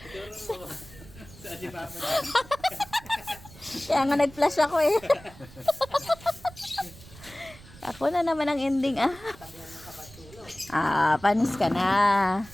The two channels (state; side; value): noise; right; rumble, 20 dB below the sound